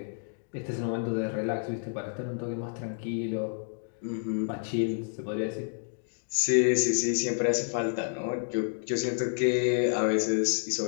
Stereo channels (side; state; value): right; silent; digital silence